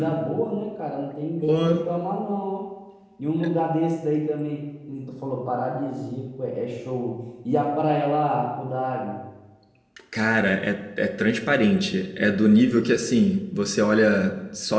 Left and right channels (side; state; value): both; identical; correlation 1.00